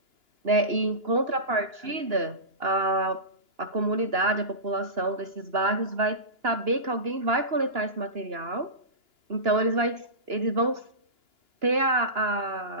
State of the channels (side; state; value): left; late; 2.9 ms